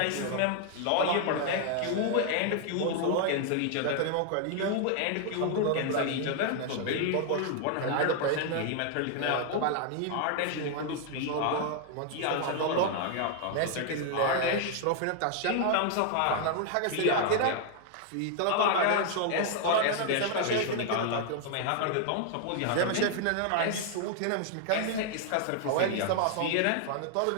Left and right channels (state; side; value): different; both; correlation 0.00